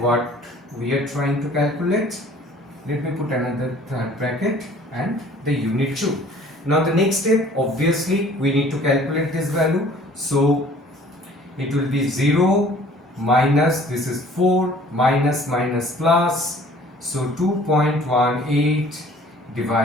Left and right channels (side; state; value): both; normal; correlation 0.52